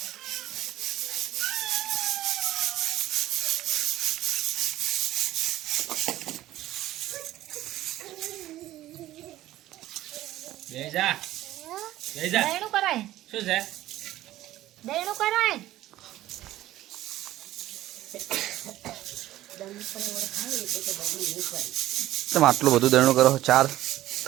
બેજા દળનું કરાય। શું છે? દળનું કરાય। તમે આટલું બધું દળનું કરો 4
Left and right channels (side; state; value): left; quieter; 14.8 dB